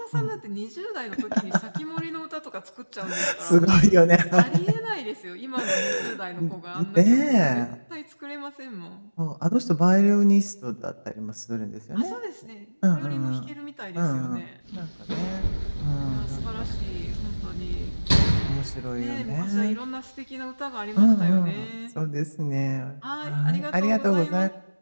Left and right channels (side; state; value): both; inverted; correlation -1.00